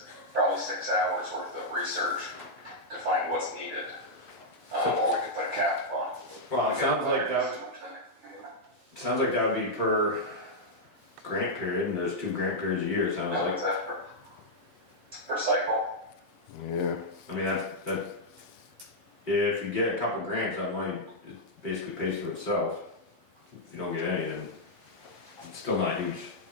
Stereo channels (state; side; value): normal; both; correlation -0.05